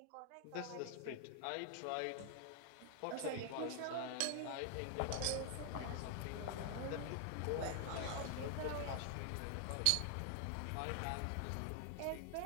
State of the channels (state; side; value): different; both; correlation 0.00